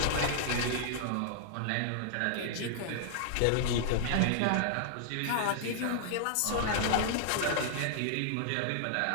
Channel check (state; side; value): different; both; correlation -0.01